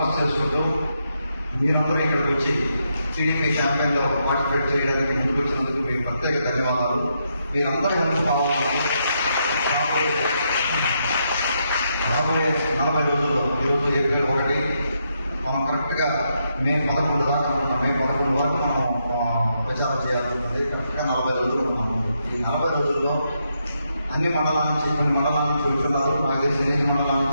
చేసుకుంటూ మీరందరూ ఇక్కడికి వచ్చి టీడీపీ క్యాంపెయిన్లో పార్టిసిపేట్ చేయడానికి ముందుకు వచ్చినందుకు మీకు ప్రత్యేక ధన్యవాదాలు. మీరందరూ హెల్ప్ కావాలని రాబోయే 40 రోజుల్లో ఈరోజు ఏప్రిల్ 1 మనం కరెక్ట్గా మే 11 దాకా అనుకుంటాం. మే 11 వరకు మనం ప్రచారం చేయాల్సి ఉంటుంది. కరెక్ట్గా 40 రోజులు ఉన్నాము. ఈ 40 రోజుల్లో అన్ని మండలాల నుంచి, కొన్ని మండలాల నుంచి వెళ్తున్నారు. నాకు తెలిసి 8 మండలాల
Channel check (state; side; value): inverted; both; correlation -0.80